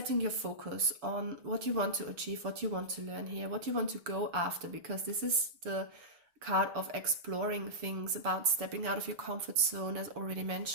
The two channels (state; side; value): late; left; 7.0 ms